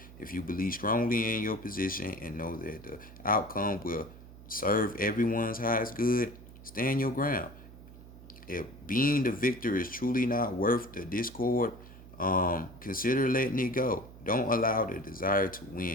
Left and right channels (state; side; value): noise; right; hum, 18 dB below the sound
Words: If you believe strongly in your position and know that the outcome will serve everyone's highest good, stand your ground. If being the victor is truly not worth the discord, consider letting it go. Don't allow the desire to